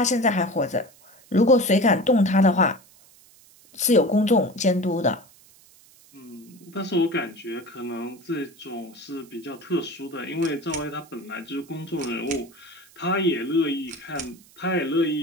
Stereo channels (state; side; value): noise; right; hiss, 26 dB below the sound